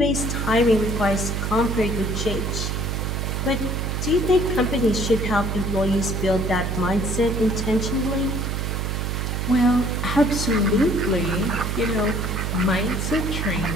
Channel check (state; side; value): noise; right; hum, 1 dB below the sound